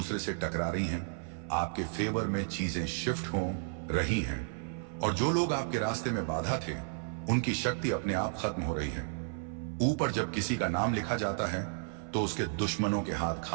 से टकरा रही हैं, आपके फेवर में चीजें शिफ्ट हो रही हैं, और जो लोग आपके रास्ते में बाधा थे, उनकी शक्ति अपने आप खत्म हो रही है। ऊपर जब किसी का नाम लिखा जाता है तो उसके दुश्मनों के हाथ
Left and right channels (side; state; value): left; silent; 56 dB below the other